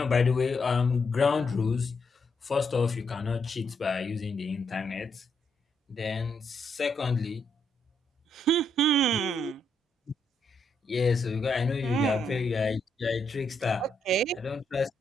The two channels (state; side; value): normal; both; correlation 0.78